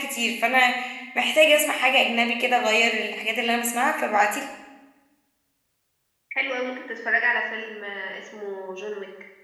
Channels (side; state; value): both; identical; correlation 1.00